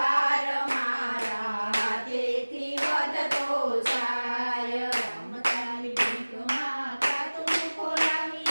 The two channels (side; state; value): both; inverted; correlation -1.00